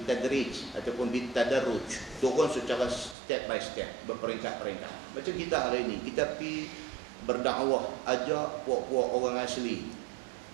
ataupun bitadarruj. Turun secara step by step, berperingkat-peringkat. Macam kita hari ini, kita pergi berdakwah, ajak puak-puak orang asli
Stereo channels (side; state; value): left; drops out; at 3.2 s